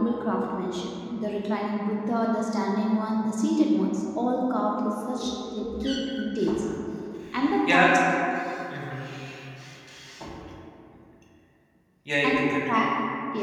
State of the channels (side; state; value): both; identical; correlation 1.00